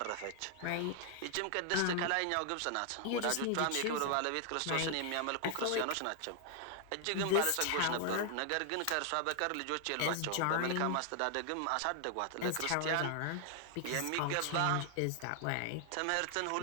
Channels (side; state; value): both; different; correlation 0.00